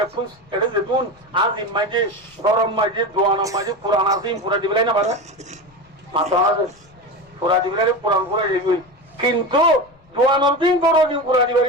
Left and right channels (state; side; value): noise; left; rumble, 29 dB below the sound